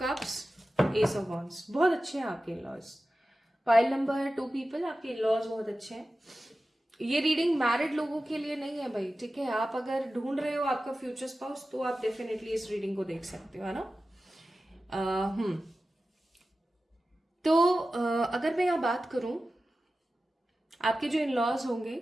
cups, ace of wands. बहुत अच्छे हैं आपके इन-लॉज। पाइल नंबर 2 पीपल, आपके इन-लॉज बहुत अच्छे हैं। ये रीडिंग मैरिड लोगों के लिए नहीं है भाई, ठीक है। आप अगर ढूंढ रहे हो आपका फ्यूचर स्पाउस तो आप डेफिनेटली इस रीडिंग को देख सकते हो, है ना। तो अगर मैं यहाँ बात करूं, आपके जो इन लॉज होंगे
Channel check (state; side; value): normal; both; correlation 0.94